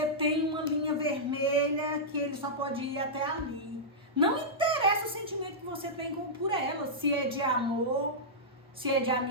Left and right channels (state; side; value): normal; both; correlation -0.11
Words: tem uma linha vermelha, que ele só pode ir até ali. Não interessa o sentimento que você tem por ela, se é de amor, se é de